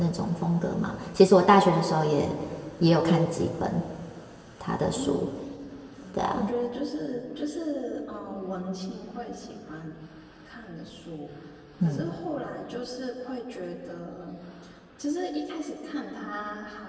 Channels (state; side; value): identical; both; correlation 1.00